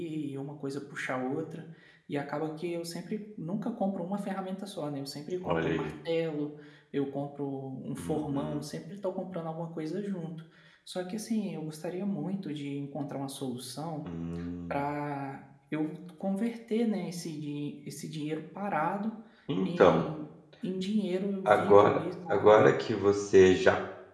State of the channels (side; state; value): both; identical; correlation 1.00